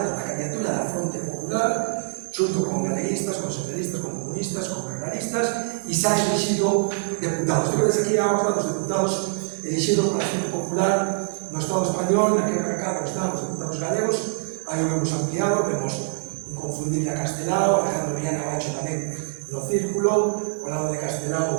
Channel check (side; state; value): left; silent; digital silence